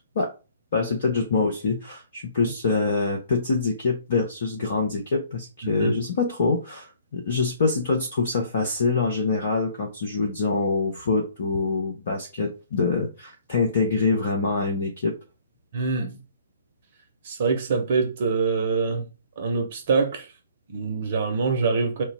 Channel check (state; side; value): inverted; both; correlation -0.58